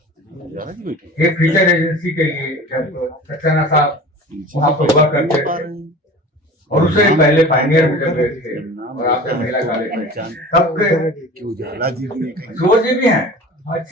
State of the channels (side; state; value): both; normal; correlation 0.39